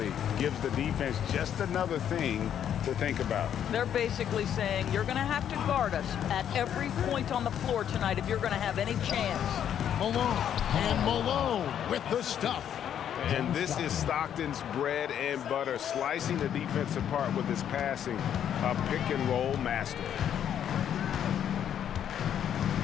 gives the defense just another thing to think about. They're basically saying you're going to have to guard us at every point on the floor tonight if you're going to have any chance. Malone with the stuff. And this is Stockton's bread and butter, slicing the defense apart with his passing, a pick-and-roll master.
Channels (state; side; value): quieter; right; 9.5 dB